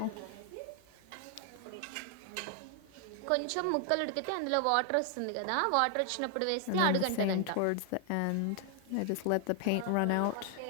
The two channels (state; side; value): different; both; correlation 0.00